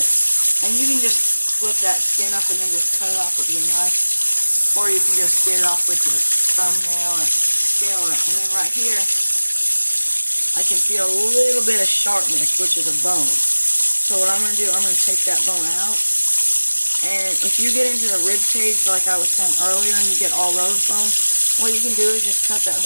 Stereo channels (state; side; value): inverted; both; correlation -1.00